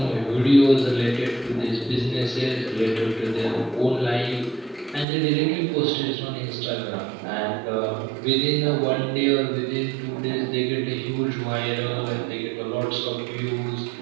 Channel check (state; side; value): drops out; left; at 5.1 s